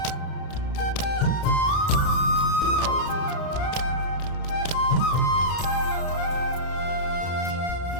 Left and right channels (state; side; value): late; right; 33 ms